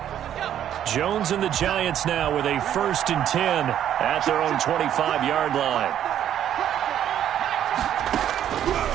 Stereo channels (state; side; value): quieter; left; 10.5 dB